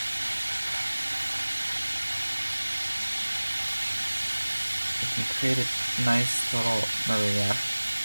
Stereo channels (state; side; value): inverted; both; correlation -1.00